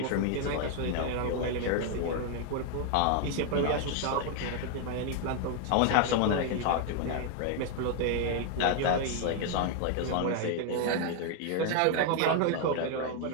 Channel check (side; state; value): both; different; correlation 0.01